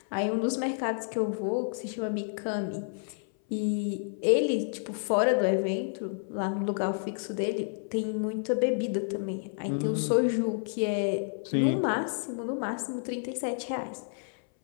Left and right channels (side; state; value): right; silent; 57 dB below the other